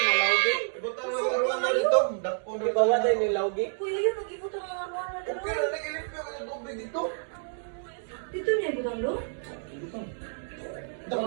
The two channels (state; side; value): silent; left; digital silence